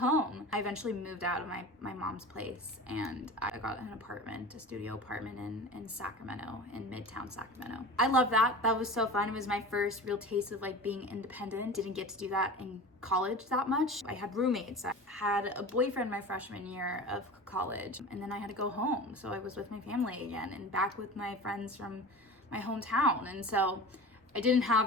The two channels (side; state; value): both; normal; correlation 0.34